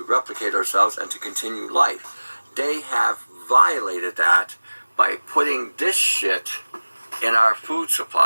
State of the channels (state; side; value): inverted; both; correlation -1.00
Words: replicate ourselves and to continue life. They have violated that by putting this shit in our food